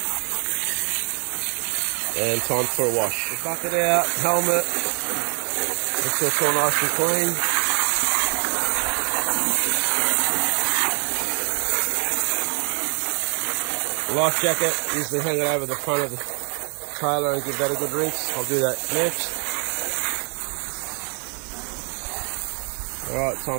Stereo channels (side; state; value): left; quieter; 39.0 dB